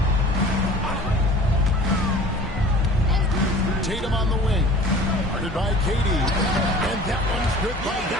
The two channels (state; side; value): normal; both; correlation 0.44